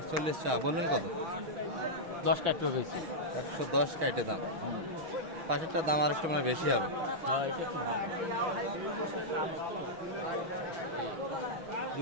চা বললেন। কত? 10 কাটতে বেশি, 110 কাইটে দাম। পাশেরটার দাম আর একটু মানে বেশি হবে।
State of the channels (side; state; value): left; late; 6.3 ms